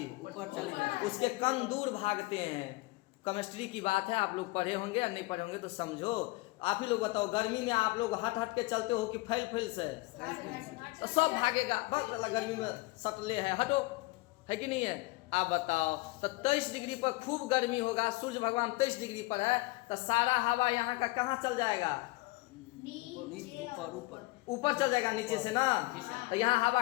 ऊपर चली जाती। उसके कण दूर भागते हैं। केमिस्ट्री की बात है, आप लोग पढ़े होंगे या नहीं पढ़े होंगे तो समझो। आप ही लोग बताओ, गर्मी में आप लोग हट के चलते हो कि फैल से? तो सब भागेगा, बस गर्मी में सटले है, हटो, है कि नहीं है? आप बताओ, तो 23 डिग्री पर खूब गर्मी होगा, सूर्य भगवान 23 डिग्री पर है, तो सारा हवा यहाँ का कहाँ चल जाएगा? ऊपर चल जाएगा नीचे से ना। तो यहाँ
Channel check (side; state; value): right; quieter; 22.2 dB